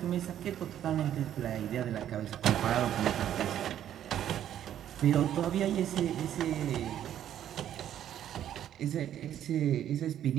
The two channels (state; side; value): quieter; left; 10.8 dB